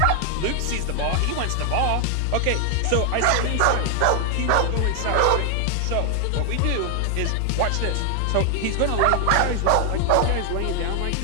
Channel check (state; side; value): different; both; correlation 0.00